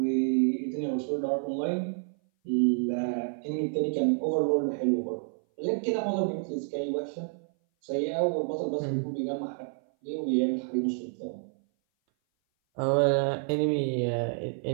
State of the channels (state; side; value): silent; left; 57 dB below the other